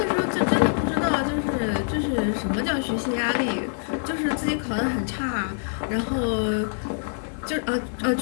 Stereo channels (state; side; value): silent; right; 62 dB below the other